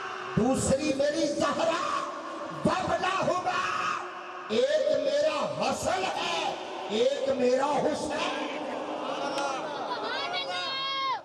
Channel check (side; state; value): both; identical; correlation 1.00